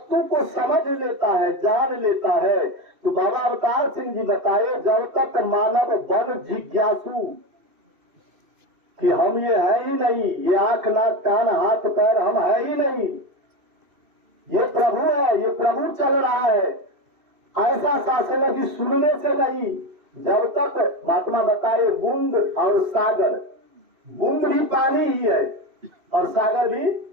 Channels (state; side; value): late; left; 2.6 ms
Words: को समझ लेता है, जान लेता है, तो बाबा अवतार सिंह जी बताए जब तक मानव बन जिज्ञासु कि हम ये है ही नहीं, ये आंख नाक कान हाथ पैर हम है ही नहीं, ये प्रभु है, ये प्रभु चल रहा है, ऐसा शासन की सुनने से नहीं। जब तक महात्मा बताए बूंद और सागर, बूंद भी पानी ही है और सागर भी